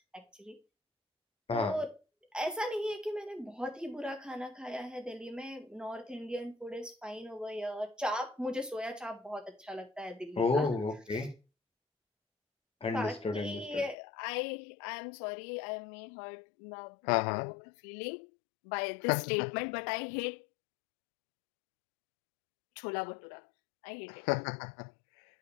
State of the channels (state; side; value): drops out; right; at 14.0 s